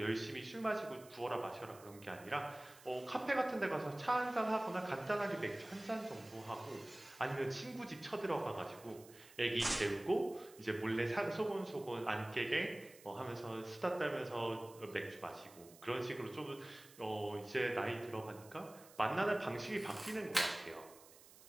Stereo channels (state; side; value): noise; right; hiss, 21 dB below the sound